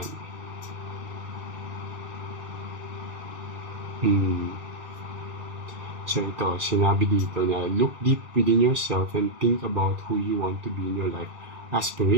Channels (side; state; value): left; late; 2.4 ms